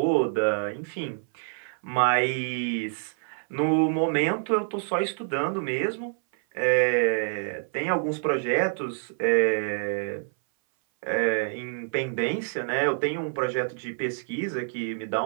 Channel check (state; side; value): silent; left; 58 dB below the other